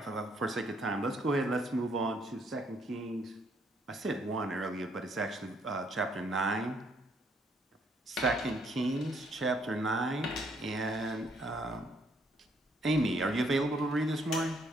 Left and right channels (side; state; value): both; normal; correlation 0.69